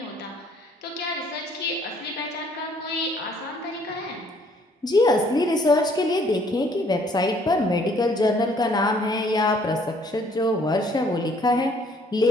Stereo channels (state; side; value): normal; both; correlation 0.62